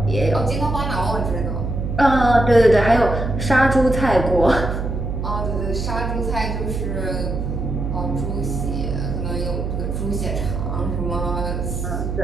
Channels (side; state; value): right; noise; hum, 3 dB below the sound